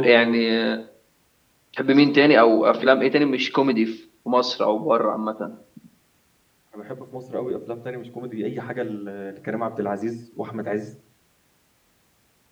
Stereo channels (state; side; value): identical; both; correlation 1.00